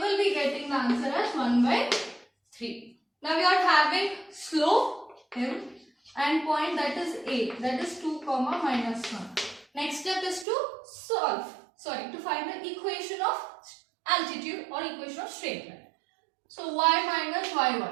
be getting the answer as 1 by 3. Now, we are having slope m and point, that is A, that is 2 comma minus 1. Next step is to to find the equation of altitude or equation of straight line. So y minus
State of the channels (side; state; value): left; drops out; at 10.5 s